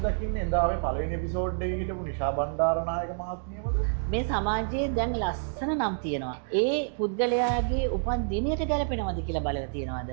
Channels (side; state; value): left; silent; digital silence